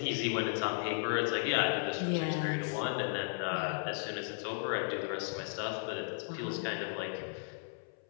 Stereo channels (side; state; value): right; silent; 54 dB below the other